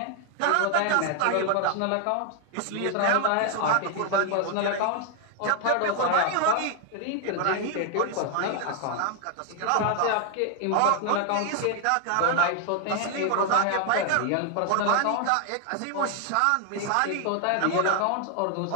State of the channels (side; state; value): both; different; correlation 0.00